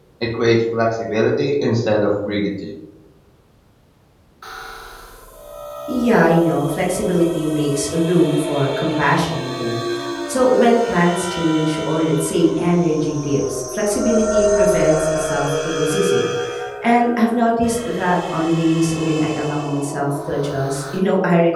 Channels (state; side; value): identical; both; correlation 1.00